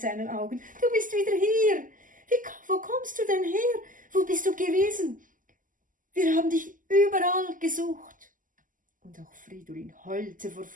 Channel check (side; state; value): left; late; 0.38 ms